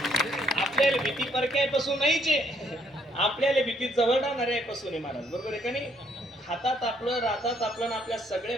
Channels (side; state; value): both; normal; correlation 0.68